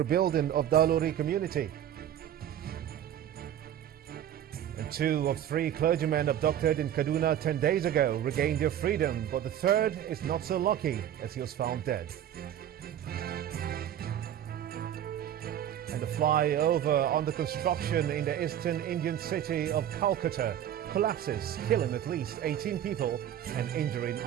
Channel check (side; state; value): left; quieter; 10.7 dB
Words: of the Alori community. And 2 of 3 clergymen abducted in Kaduna 10 days ago regained their freedom, but the third is not so lucky as he was found dead. And the flyover under construction in the eastern Indian city of Calcutta collapses, killing at least 18 people and injuring